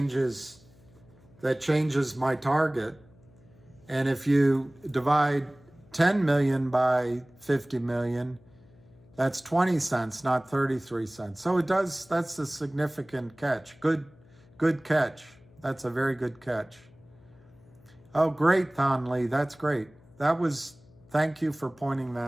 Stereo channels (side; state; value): left; noise; hum, 27 dB below the sound